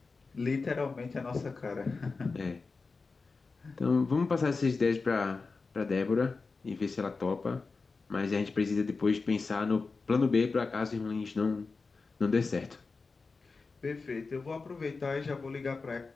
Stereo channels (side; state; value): right; quieter; 4.2 dB